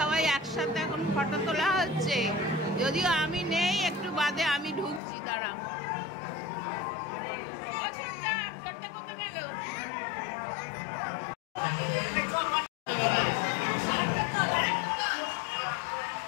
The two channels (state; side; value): drops out; right; at 5.0 s